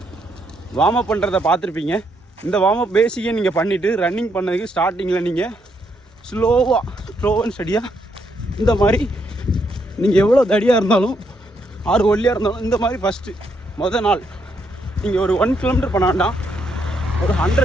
வார்ம் அப் பண்ணுறதை பார்த்துருப்பீங்க. இந்த வார்ம் அப் பேசிக்கே நீங்கள் பண்ணிவிட்டு ரன்னிங் பண்ணதுக்கு ஸ்டார்டிங்கில் நீங்கள் ஸ்லோ அண்ட் ஸ்டடியாக இந்த மாதிரி நீங்கள் எவ்வளோ தடியாக இருந்தாலும் ஆறு ஒல்லியாக இருந்தாலும் இந்த மாதிரி மொதல் நாள் நீங்கள் ஒரு 1 கிலோமீட்டர் பண்ண வேண்டாம், ஒரு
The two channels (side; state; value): both; normal; correlation 0.76